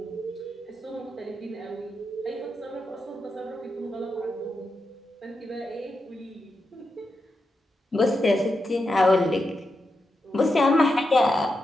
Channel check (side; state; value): both; normal; correlation 0.87